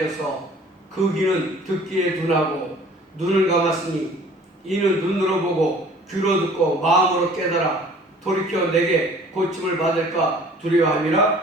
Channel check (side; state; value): both; normal; correlation 0.51